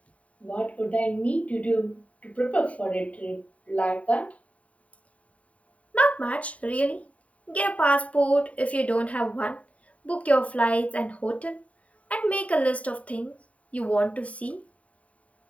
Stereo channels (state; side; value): late; right; 0.067 ms